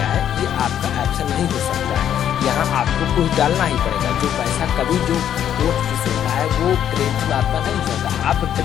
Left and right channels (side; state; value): right; quieter; 10.0 dB